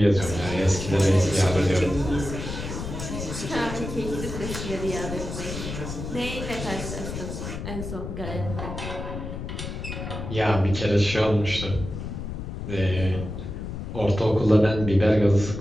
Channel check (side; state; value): left; noise; rumble, 7 dB below the sound